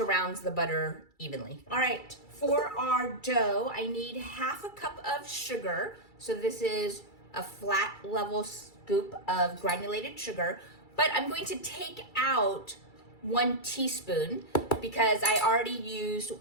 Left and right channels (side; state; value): right; late; 2.3 ms